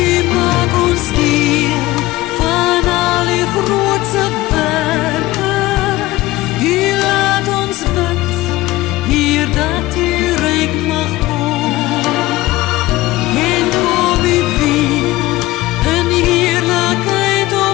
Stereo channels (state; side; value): quieter; right; 18.0 dB